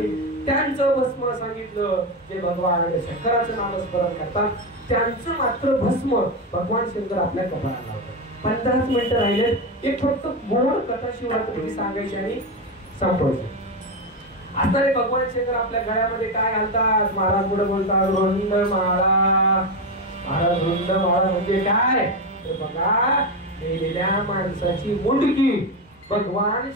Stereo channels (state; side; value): normal; both; correlation 0.13